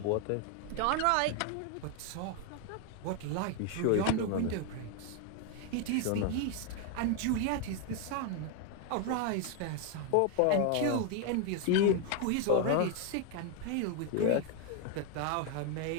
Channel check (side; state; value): both; different; correlation 0.01